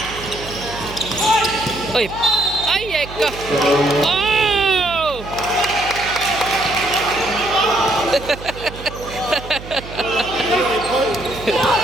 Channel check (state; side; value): noise; right; hum, 13 dB below the sound